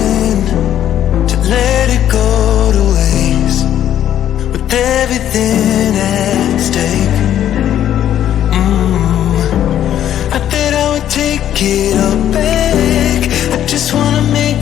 to let it go to waste, with everything at stake. I bet I would take it all back. I just wanna make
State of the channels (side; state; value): right; quieter; 11.0 dB